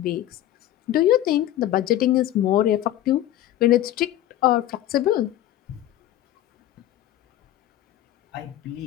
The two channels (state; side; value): quieter; right; 13.3 dB